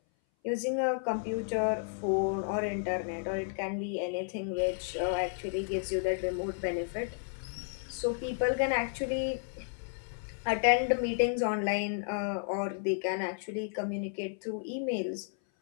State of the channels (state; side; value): silent; right; 56 dB below the other